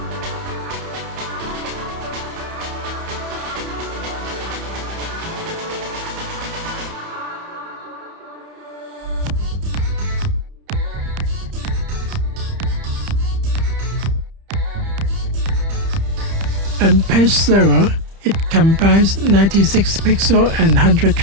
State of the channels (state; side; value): late; left; 30 ms